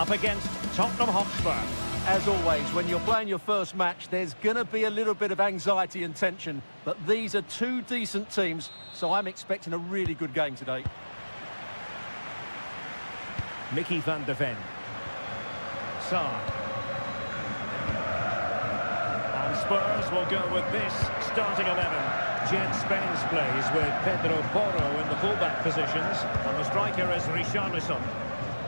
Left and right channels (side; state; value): both; inverted; correlation -1.00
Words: against Tottenham Hotspur. As always, when you're playing your first match, there's going to be a little bit of anxiety and tension. But these are two decent teams, so I'm expecting a really good game today. Mickey van de Ven. Sarr. And Spurs will go with this starting 11. Jed Spence plays with Pedro Porro in the fullback positions, and the striker is Richarlison.